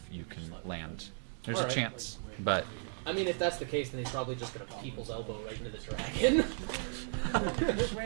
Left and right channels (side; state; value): left; silent; 54 dB below the other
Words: you can land. There's All a right. chance, but I mean, if that's the case, then he's probably just gonna people's elbow right into the dragon.